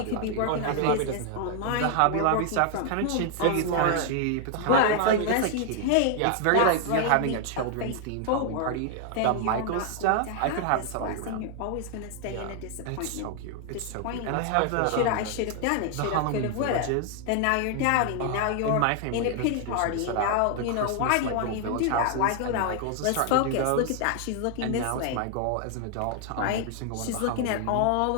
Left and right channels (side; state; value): both; different; correlation 0.00